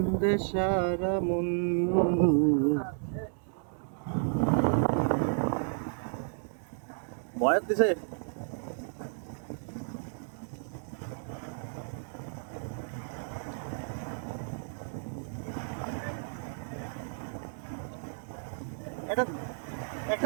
সারা মন। বয়াত দিছে একটা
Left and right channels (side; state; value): left; silent; 56 dB below the other